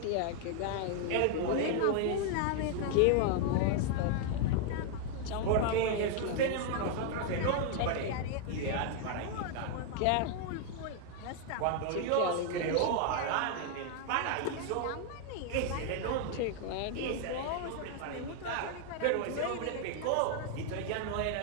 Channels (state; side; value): different; both; correlation 0.00